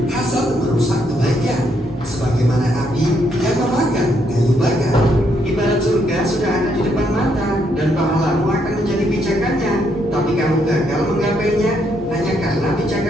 hasad merusak kebaikan. Sebagaimana api yang memakan kayu bakar. Ibarat surga sudah ada di depan mata dan pahlamu akan menjadi pijakannya. Tapi kamu gagal menggapainya hanya karena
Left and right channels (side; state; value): both; normal; correlation 0.74